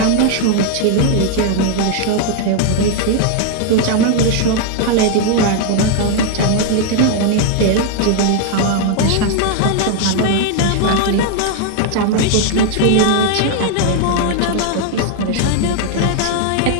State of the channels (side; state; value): both; different; correlation 0.00